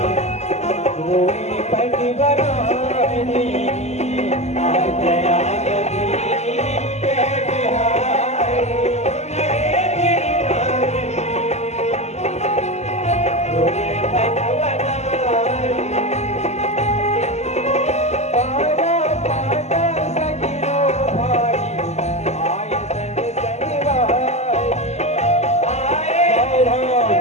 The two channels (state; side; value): late; right; 0.33 ms